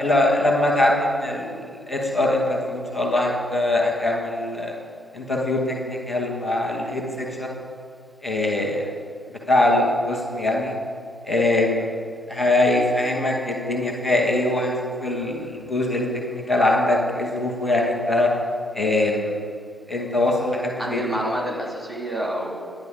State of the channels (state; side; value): normal; both; correlation 0.70